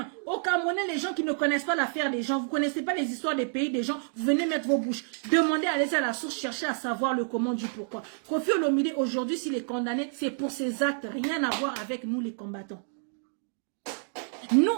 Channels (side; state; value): left; silent; digital silence